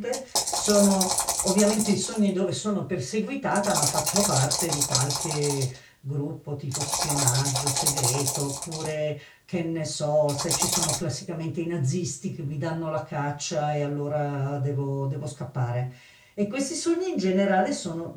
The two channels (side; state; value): both; identical; correlation 1.00